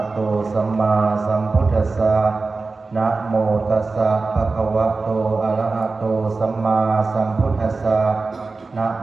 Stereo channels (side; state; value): left; quieter; 3.9 dB